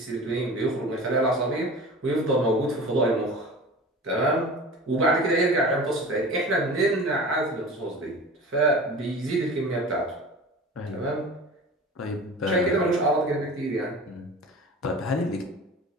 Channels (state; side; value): normal; both; correlation 0.37